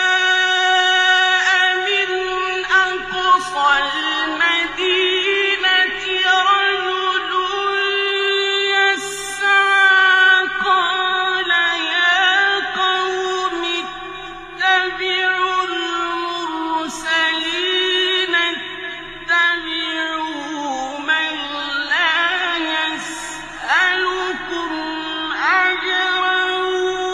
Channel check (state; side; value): identical; both; correlation 1.00